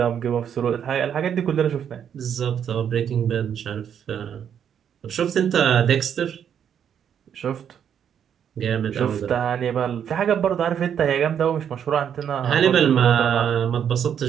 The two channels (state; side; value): quieter; left; 8.6 dB